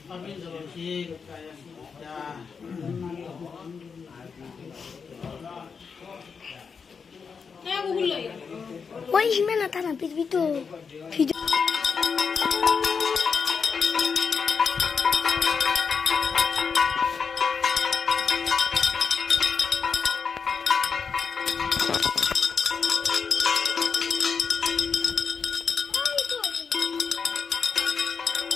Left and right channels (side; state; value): right; quieter; 5.8 dB